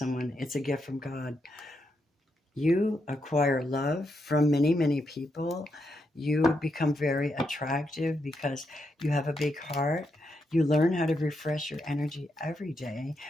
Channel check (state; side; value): normal; both; correlation 0.82